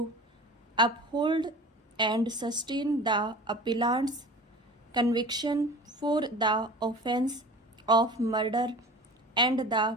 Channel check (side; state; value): both; normal; correlation 0.39